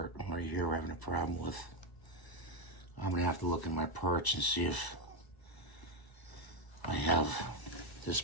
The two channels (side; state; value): right; late; 1.0 ms